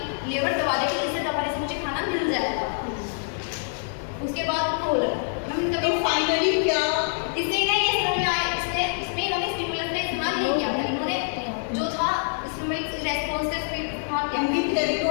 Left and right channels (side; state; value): right; silent; digital silence